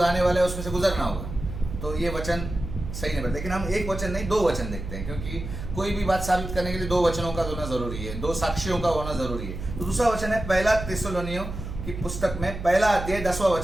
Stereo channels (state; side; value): noise; right; hum, 8 dB below the sound